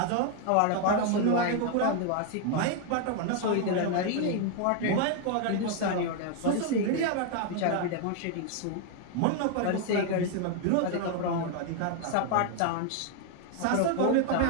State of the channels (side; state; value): both; different; correlation 0.00